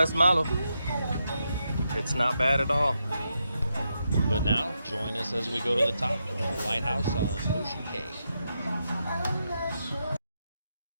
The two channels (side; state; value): both; inverted; correlation -0.83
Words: malo. It's not bad at all. But now, join us as we go to the top of the lighthouse on Ocean Cay.